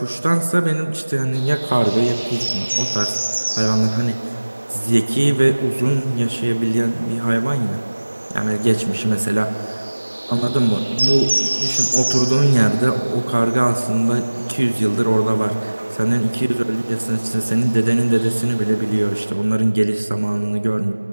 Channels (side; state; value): both; inverted; correlation -1.00